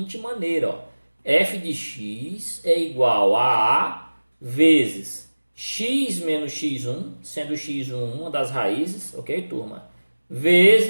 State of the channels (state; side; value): inverted; both; correlation -1.00